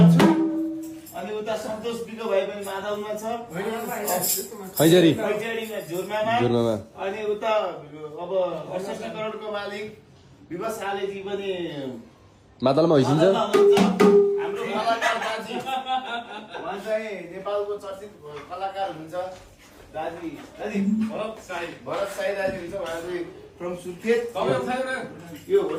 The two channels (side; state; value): both; identical; correlation 1.00